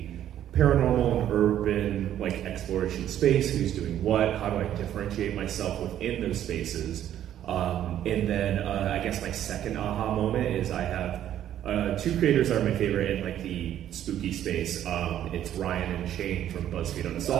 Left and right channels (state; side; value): quieter; left; 11.2 dB